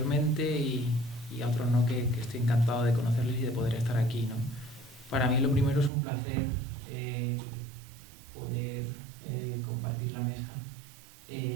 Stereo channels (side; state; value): left; drops out; at 5.9 s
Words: y a otros no, que estoy encantado de conocerles y de poder estar aquí, ¿no? Para mí lo primero es un placer poder compartir la mesa